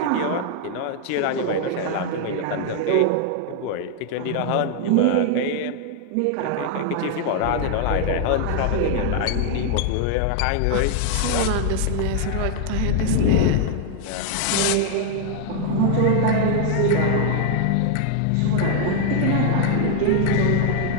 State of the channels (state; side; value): different; both; correlation 0.00